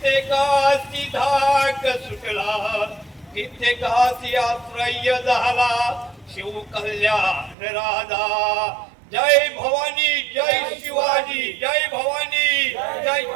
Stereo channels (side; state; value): left; drops out; at 7.6 s